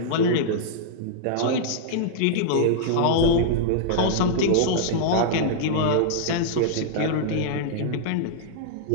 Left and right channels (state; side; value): different; both; correlation -0.02